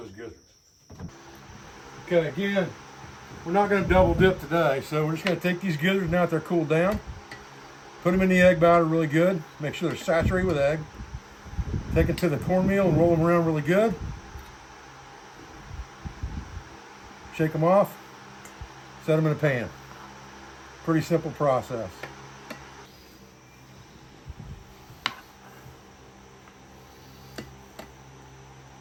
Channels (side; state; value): both; identical; correlation 1.00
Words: gizzards. Okay, again, we're not going to double dip today, so we're just going to take these gizzards now that they're cooled down, put them in the egg batter really good, make sure they're saturated with egg, take it to the cornmeal and roll them around really good, shake them off, set them in a pan. Pretty simple process.